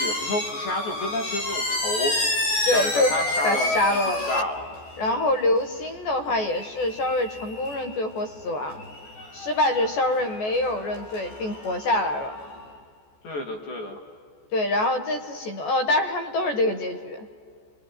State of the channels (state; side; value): late; right; 14 ms